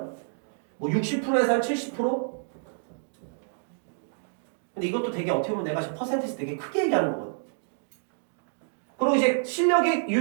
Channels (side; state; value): left; silent; digital silence